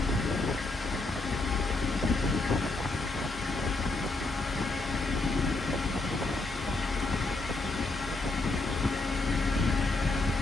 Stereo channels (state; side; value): quieter; right; 3.2 dB